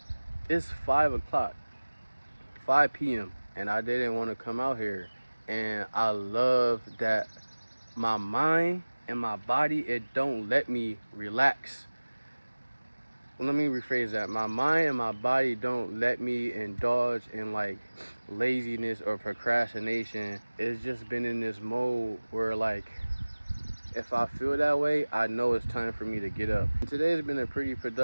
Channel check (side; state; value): both; inverted; correlation -1.00